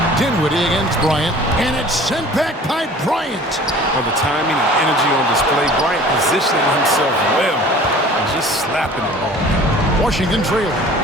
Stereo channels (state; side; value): normal; both; correlation 0.46